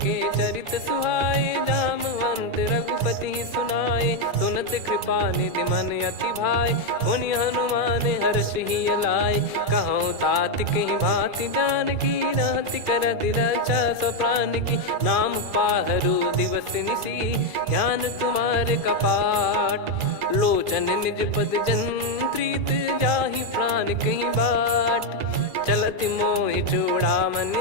चरित सुहाए, जामवंत रघुपति सुनाए। सुनत कृपा निधि मन अति भाई, पुनि हनुमान हर्ष ही लाए। कहूँ तात कहीं भांति जानकी, रहति करति रक्षा सो प्राण की। नाम पाहरु दिवस निसी, ज्ञान तुम्हारे कपाट। लोचन निज पद जंत्रित, जाहि प्राण कहीं बाट। चलति मोहि चूड़ामन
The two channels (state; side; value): late; left; 2.3 ms